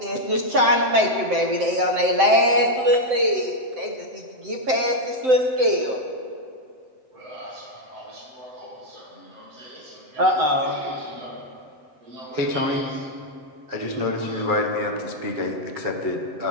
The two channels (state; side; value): late; left; 7.8 ms